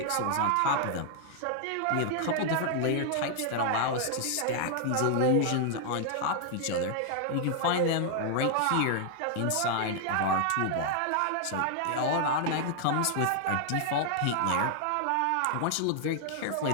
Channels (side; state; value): both; different; correlation 0.00